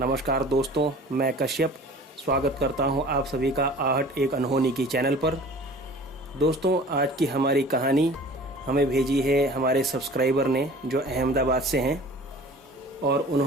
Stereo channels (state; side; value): normal; both; correlation 0.45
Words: दोस्तों, मैं कश्यप स्वागत करता हूं आप सभी का आहट एक अनहोनी की चैनल पर। दोस्तों, आज की हमारी कहानी हमें भेजी है हमारे सब्सक्राइबर ने जो अहमदाबाद से हैं, और